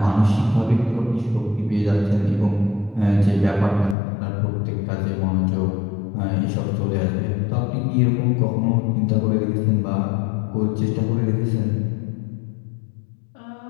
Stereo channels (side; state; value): right; drops out; at 4.0 s